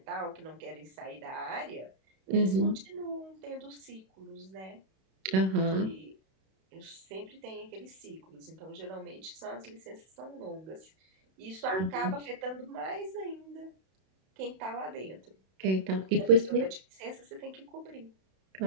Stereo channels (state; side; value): late; left; 32 ms